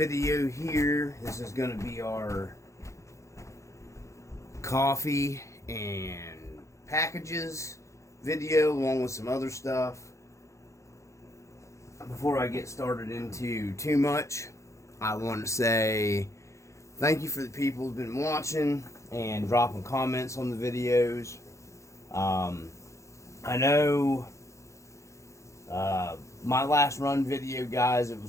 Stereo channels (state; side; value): late; right; 0.15 ms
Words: here. This is going to be our coffee and packages video along with some other stuff. Before I get started into too much, I want to say thank you for the people who've been watching and dropping comments on the videos. I know my last run video, guys, it